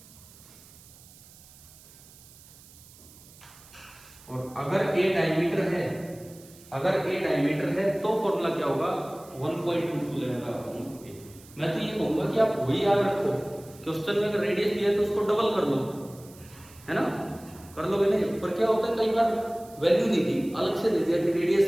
और अगर a डायमीटर है, अगर a डायमीटर है तो फॉर्मूला क्या होगा 1.22 लैम्ब्डा अपॉन a। मैं तो ये कहूंगा कि आप वही याद रखो, क्वेश्चन में अगर रेडियस दिया है तो उसको डबल कर लो, है ना, कर लोगे नहीं। पर क्या होता है कई बार वैल्यू नहीं दी, अलग से दे दिया कि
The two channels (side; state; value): right; noise; hiss, 22 dB below the sound